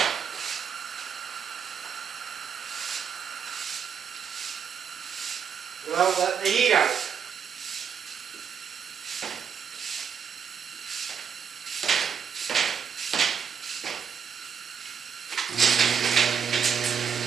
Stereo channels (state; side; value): quieter; left; 7.1 dB